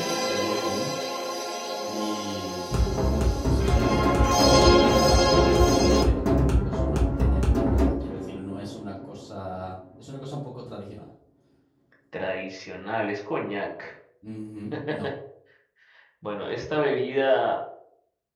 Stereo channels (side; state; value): both; identical; correlation 1.00